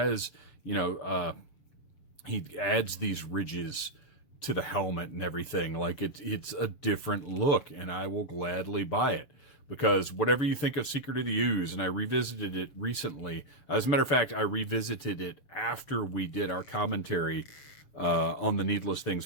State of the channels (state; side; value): late; right; 7.1 ms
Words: you know, he adds these ridges to the helmet and everything. Like it's a different look, and I will gladly buy it. Because whatever you think of Secret of the Ooze, and I revisited it recently. As a matter of fact, I revisited it after we did our commentary on the Needless